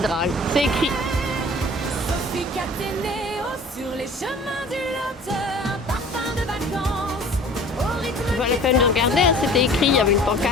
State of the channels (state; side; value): normal; both; correlation 0.46